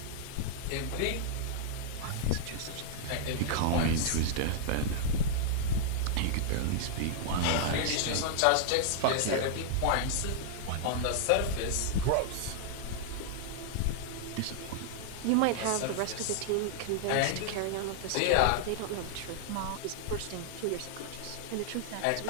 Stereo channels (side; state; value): both; different; correlation -0.01